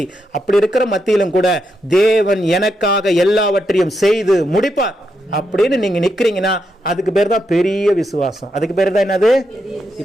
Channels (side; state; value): both; normal; correlation 0.82